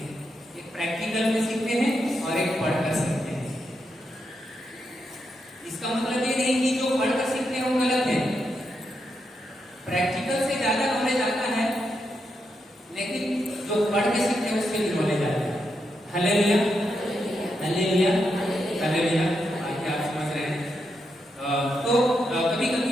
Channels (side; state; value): both; normal; correlation 0.83